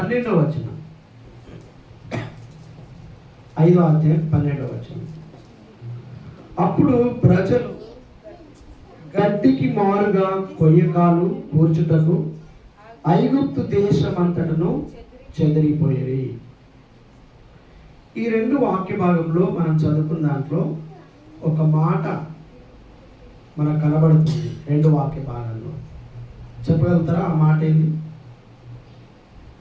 వచనం. 5వ అధ్యాయం 12వ వచనం. అప్పుడు ప్రజలు గడ్డికి మారుగా కొయ్యకాలు కూర్చుటకు ఐగుప్తు దేశమంతటను చెదిరిపోయేవి. ఈ రెండు వాక్య భాగంలో మనం చదువుకున్న దాంట్లో ఒక మాట మనకు కనబడుతుంది. రెండు వాక్య భాగాల్లో చెప్పగలుగుతారా ఆ మాట ఏంది?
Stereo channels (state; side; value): identical; both; correlation 1.00